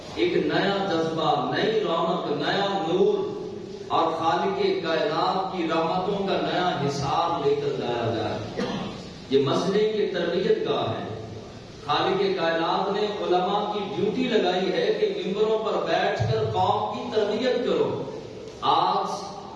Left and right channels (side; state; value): both; identical; correlation 1.00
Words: ایک نیا جذبہ، نئی رونق، نیا نور اور خالق کائنات کی رحمتوں کا نیا حساب لے کر جایا جائے۔ یہ مسجد کی تربیت گاہ ہے۔ خالق کائنات نے علماء کی ڈیوٹی لگائی ہے کہ ممبروں پر بیٹھ کر قوم کی تربیت کرو۔ آج